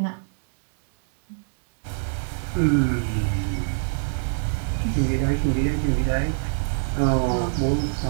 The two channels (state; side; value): silent; left; digital silence